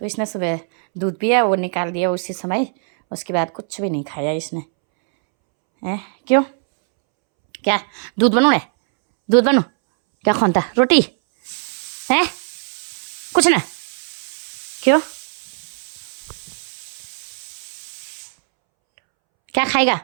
तो इसने सुबह दूध पिया, वो निकाल दिया उसी समय, उसके बाद कुछ भी नहीं खाया इसने। क्यों? क्या दूध बनू? दूध बनू क्या खानता? रोटी है? कुछ ना। क्यों? क्या खाएगा?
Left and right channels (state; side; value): silent; left; 66 dB below the other